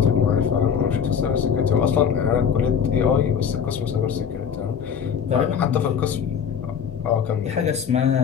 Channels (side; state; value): right; quieter; 7.4 dB